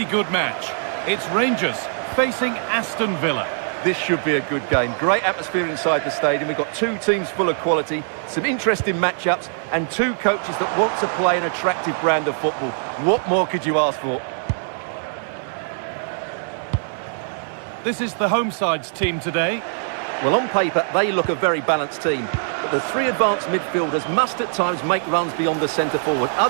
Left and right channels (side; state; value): left; silent; digital silence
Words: good match. It's Rangers facing Aston Villa. This should be a good game. Great atmosphere inside the stadium. We've got two teams full of quality, some interesting matchups, and two coaches that want to play an attractive brand of football. What more could you ask for? This is the home side's team today. Well, on paper, they look a very balanced team. But the three advanced midfielders must at times make runs beyond the centre forward.